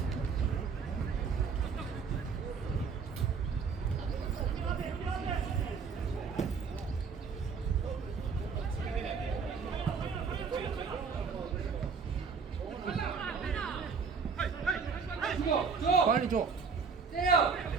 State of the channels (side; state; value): left; quieter; 5.5 dB